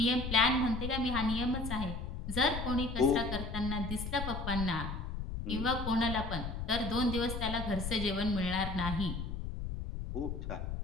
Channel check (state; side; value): noise; left; rumble, 5 dB below the sound